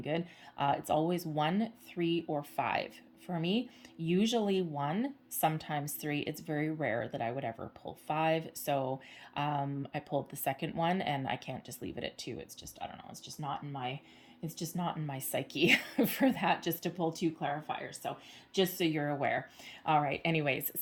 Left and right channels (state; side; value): identical; both; correlation 1.00